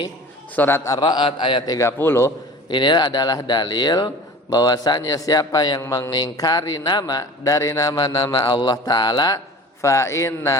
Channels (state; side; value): normal; both; correlation 0.40